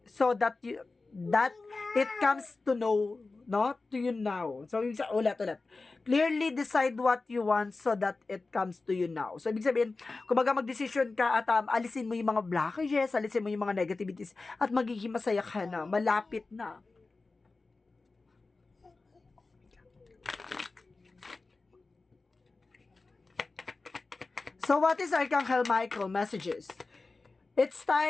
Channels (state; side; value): quieter; right; 3.7 dB